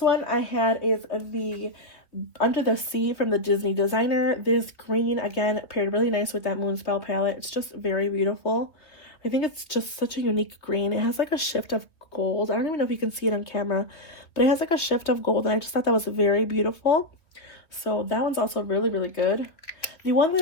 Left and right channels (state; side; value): late; right; 2.8 ms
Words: I had is the Under the Sea from the Disney Designer. This green, again, paired really nice with that Moonspell palette. It's just very beautiful. I think it's just such a unique green. It has like a shift of gold. I don't even know if you can see it on camera, but it has like a shift of gold, and I just thought that was very beautiful. So that one's also really, really good. The one that